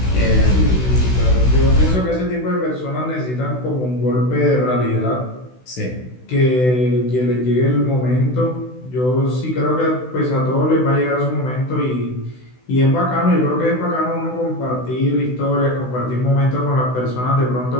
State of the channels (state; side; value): late; right; 16 ms